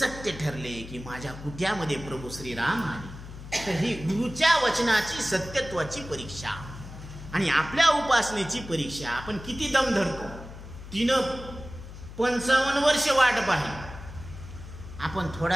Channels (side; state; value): left; noise; hum, 13 dB below the sound